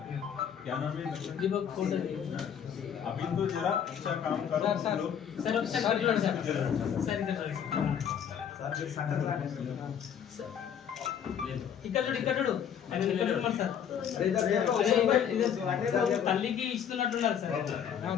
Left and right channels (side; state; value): right; quieter; 8.5 dB